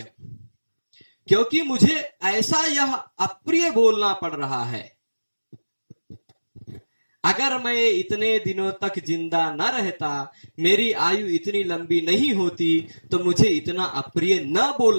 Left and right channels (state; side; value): inverted; both; correlation -1.00